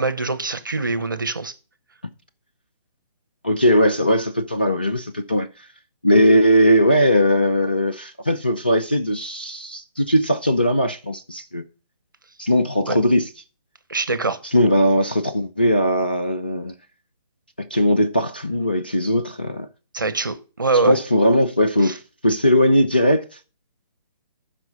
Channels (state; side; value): inverted; both; correlation -0.75